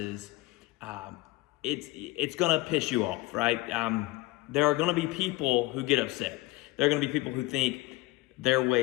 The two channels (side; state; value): right; quieter; 20.8 dB